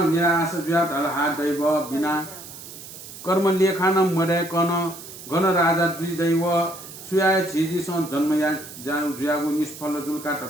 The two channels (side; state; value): right; noise; hiss, 14 dB below the sound